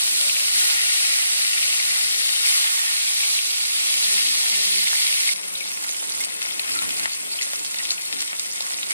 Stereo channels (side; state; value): both; inverted; correlation -0.78